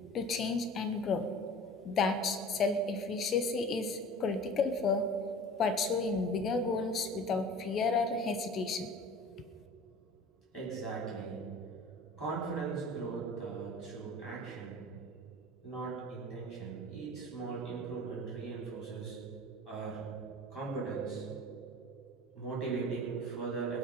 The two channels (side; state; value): both; normal; correlation 0.41